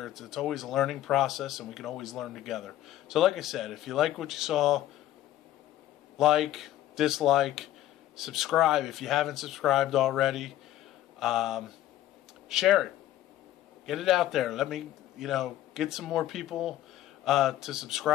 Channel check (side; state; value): right; quieter; 13.5 dB